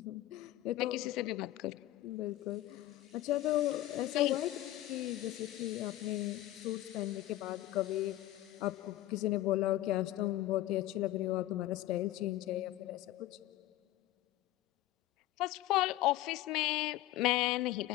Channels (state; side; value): quieter; right; 15.5 dB